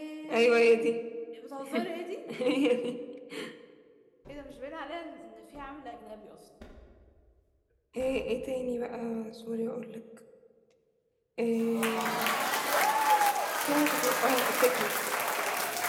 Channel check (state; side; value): identical; both; correlation 1.00